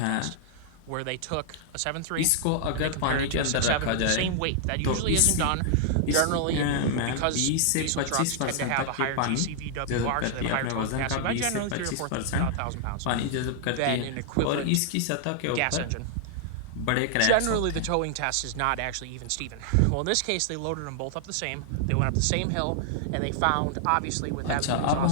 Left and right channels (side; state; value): both; different; correlation -0.01